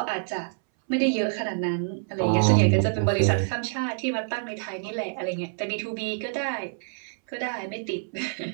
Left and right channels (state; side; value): silent; left; 60 dB below the other